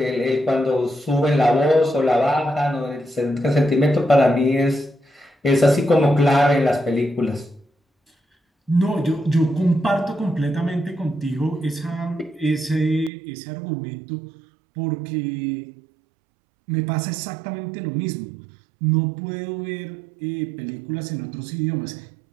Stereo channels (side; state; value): left; drops out; at 13.1 s